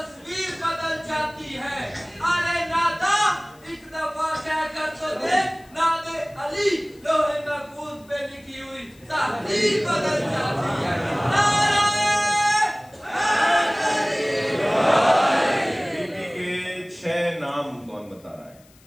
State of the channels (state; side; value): noise; left; hiss, 28 dB below the sound